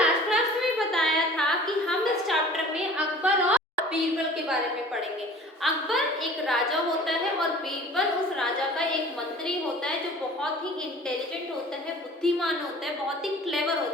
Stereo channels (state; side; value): normal; both; correlation 0.46